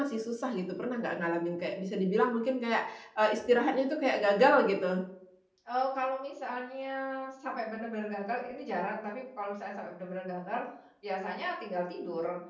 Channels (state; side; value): identical; both; correlation 1.00